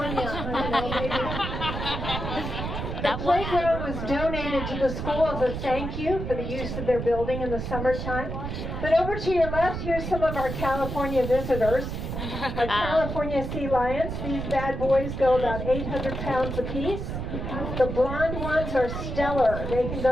I don't know, maybe. The playground was donated to the school as a thank you for the use of their building in the summertime. But over to your left, here's some of our California visitors. Our California sea lions. These bad boys go about 800 pounds apiece. The blonde ones are stellar. They can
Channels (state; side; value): noise; right; rumble, 5 dB below the sound